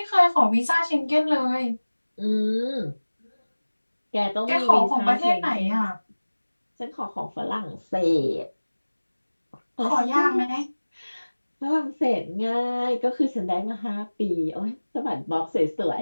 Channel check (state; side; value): inverted; both; correlation -1.00